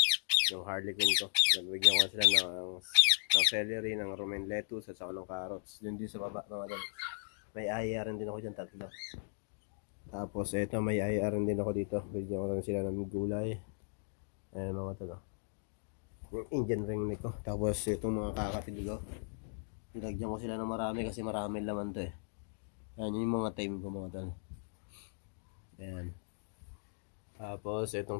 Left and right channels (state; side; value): silent; right; digital silence